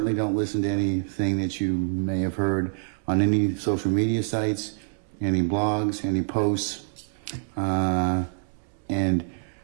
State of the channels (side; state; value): left; silent; digital silence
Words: don't listen to anything that you may have heard on any social media sites, any blogs, any posts. And